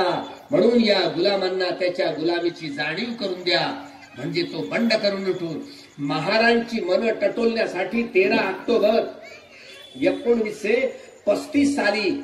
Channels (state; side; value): identical; both; correlation 1.00